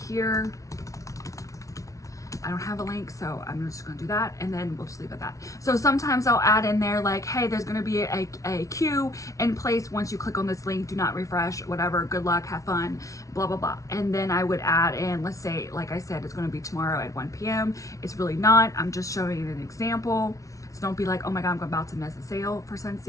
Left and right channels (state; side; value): late; right; 0.16 ms